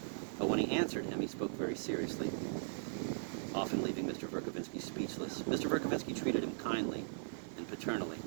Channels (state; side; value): silent; left; 52 dB below the other